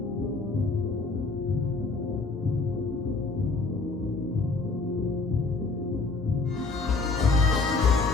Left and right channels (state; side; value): quieter; right; 3.8 dB